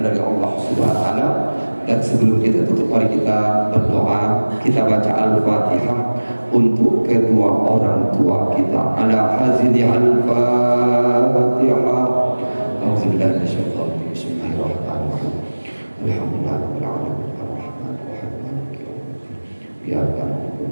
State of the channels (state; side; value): inverted; both; correlation -1.00